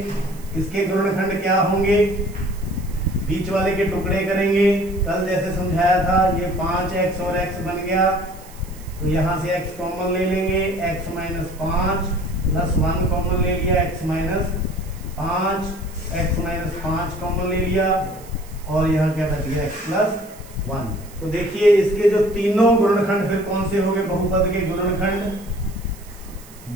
इसके गुणनखंड क्या होंगे, बीच वाले के टुकड़े करेंगे। कल जैसे समझाया था, ये 5x और x बन गया, तो यहां से x कॉमन ले लेंगे, x -5 प्लस 1 कॉमन ले लिया, x -5 कॉमन ले लिया, और यहाँ क्या बच गया, x + 1। तो देखिए इसके जो तीनों गुणनखंड फिर कौन से हो गए, बहुपद के गुणनखंड।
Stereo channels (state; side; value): noise; right; hiss, 22 dB below the sound